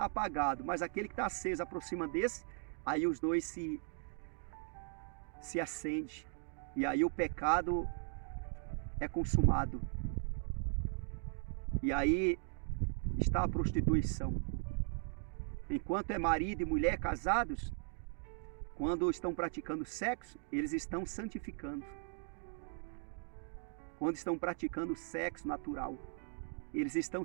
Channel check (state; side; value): silent; left; 52 dB below the other